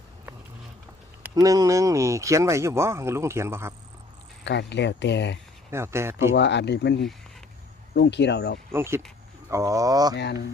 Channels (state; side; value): quieter; right; 3.1 dB